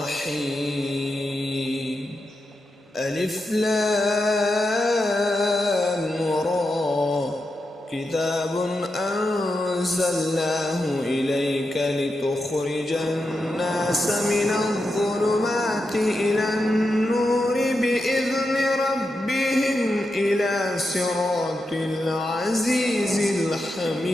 ألف لام را كتاب أنزلناه إليك لتخرج الناس من الظلمات إلى النور بإذن ربهم إلى صراط العزيز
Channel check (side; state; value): both; normal; correlation 0.88